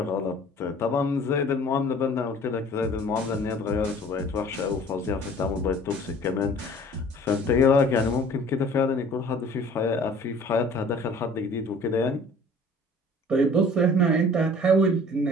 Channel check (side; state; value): both; normal; correlation 0.49